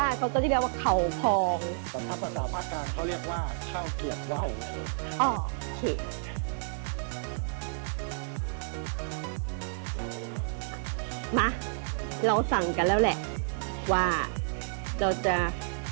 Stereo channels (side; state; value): left; silent; digital silence